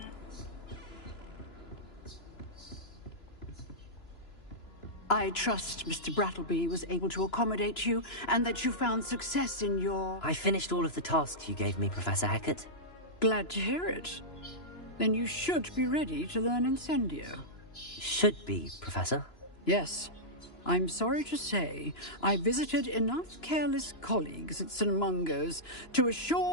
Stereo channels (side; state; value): right; late; 2.9 ms